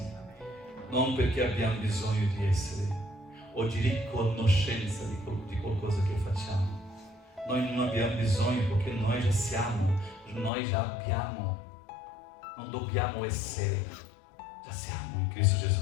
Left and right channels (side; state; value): right; drops out; at 10.5 s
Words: Non perché abbiamo bisogno di essere o di riconoscenza di qualcosa che facciamo. Noi non abbiamo bisogno perché noi già siamo, noi già abbiamo. Non dobbiamo essere, già siamo in Cristo Gesù.